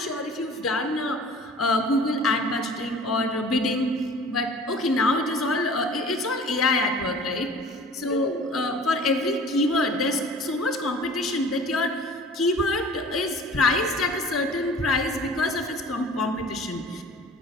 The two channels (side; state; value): both; normal; correlation 0.45